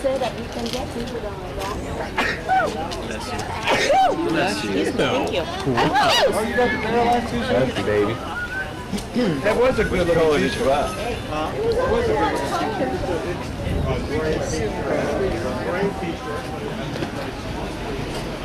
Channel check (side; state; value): both; identical; correlation 1.00